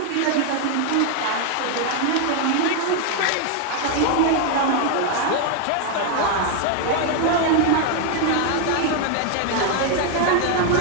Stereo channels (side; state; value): both; different; correlation 0.01